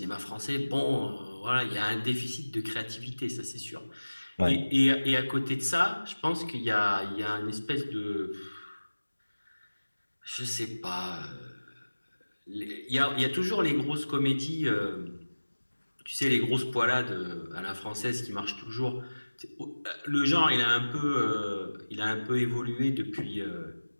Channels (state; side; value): inverted; both; correlation -1.00